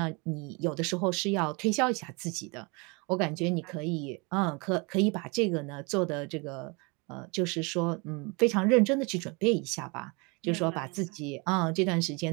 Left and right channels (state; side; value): quieter; left; 29.5 dB